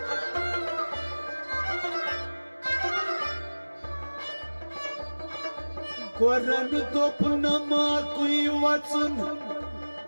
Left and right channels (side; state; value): both; inverted; correlation -1.00